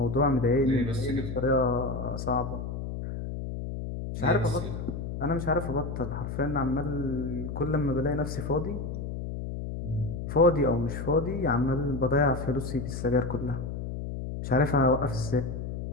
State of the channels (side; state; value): left; noise; hum, 6 dB below the sound